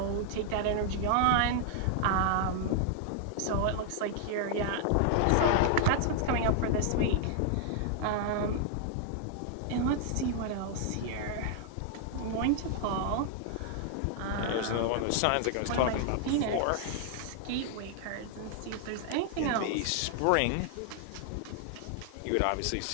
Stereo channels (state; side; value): different; both; correlation 0.00